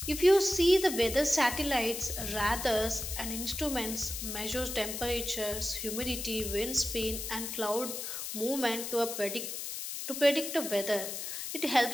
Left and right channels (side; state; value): left; noise; hiss, 6 dB below the sound